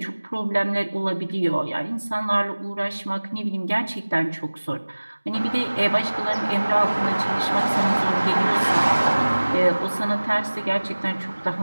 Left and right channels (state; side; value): inverted; both; correlation -1.00